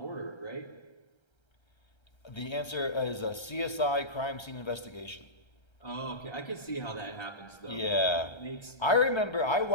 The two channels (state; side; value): late; right; 1.3 ms